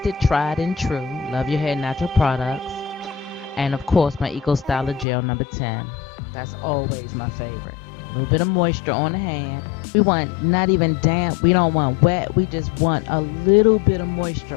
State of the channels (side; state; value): right; drops out; at 5.1 s